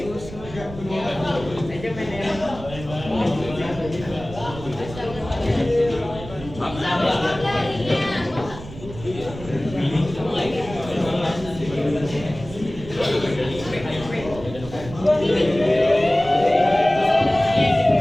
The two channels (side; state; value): right; noise; rumble, 14 dB below the sound